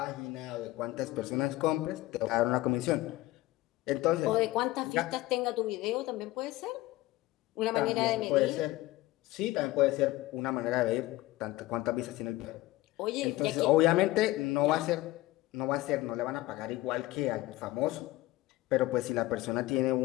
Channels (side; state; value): right; quieter; 17.9 dB